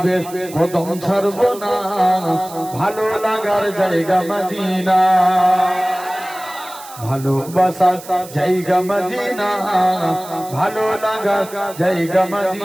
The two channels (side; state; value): right; noise; hiss, 17 dB below the sound